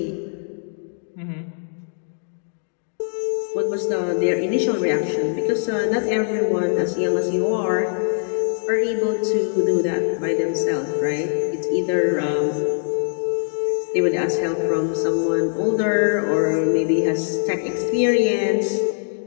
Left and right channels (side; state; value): right; silent; digital silence